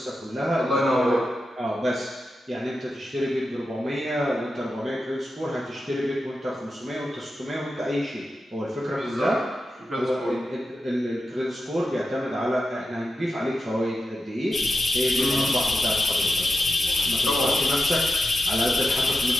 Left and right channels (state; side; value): normal; both; correlation 0.90